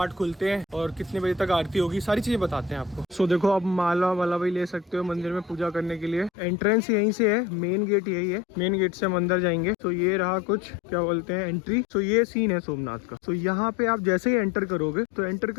खुलते हैं और कितने बजे तक आरती होगी, सारी चीजें बताते हैं आपको। सो देखो आप माला वाला भी ले सकते हो मंदिर में पूजा करने के लिए। एंट्रेंस यहीं से है, मेन गेट यही है, मेन गेट से हम अंदर जाएंगे। तो ये रहा कुछ क्या बोलते हैं एंट्री। तो ये सीन है सोमनाथ का। तो यहाँ पे आप जैसे ही एंटर करोगे तो एंटर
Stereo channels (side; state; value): right; drops out; at 6.3 s